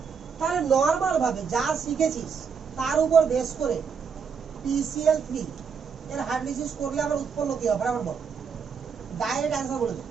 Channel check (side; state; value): left; quieter; 6.1 dB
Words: তাহলে নরমাল ভাবে যা শিখেছিস তার উপর বেস করে PCl3 এর হাইড্রোলিসিস করলে আমরা উৎপন্ন কি হবে বরাবর বল, ডাইরেক্ট অ্যানসার বলে দে।